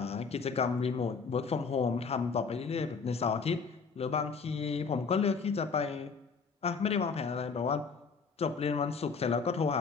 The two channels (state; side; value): quieter; right; 5.2 dB